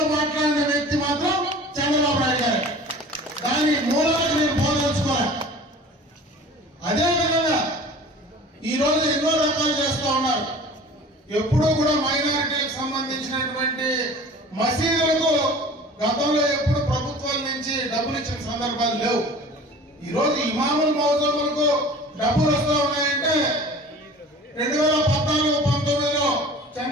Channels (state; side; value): normal; both; correlation 0.43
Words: మాట్లాడిన వ్యక్తి మాత్రం చంద్రబాబు నాయుడు గారు. దాని మూలాలకు నేను పోదలుచుకోవాలి. అదేవిధంగా ఈ రోజు ఎన్నో రకాలు చేస్తూ ఉన్నారు. ఎప్పుడూ కూడా మైనారిటీలకు సంబంధించినటువంటి మసీదులకు గతంలో ఎప్పుడు ప్రభుత్వాల నుంచి డబ్బులు ఇచ్చిన సందర్భాలు లేవు. ఈ రోజు ఇమాముల్ మౌజములకు డబ్బులు వస్తూ ఉన్నాయంటే 2014-19లో